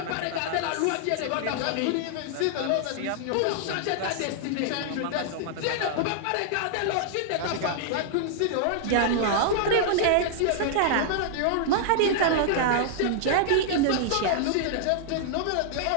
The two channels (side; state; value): both; different; correlation -0.01